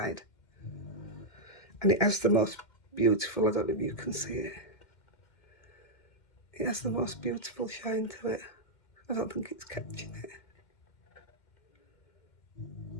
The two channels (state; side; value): late; right; 2.1 ms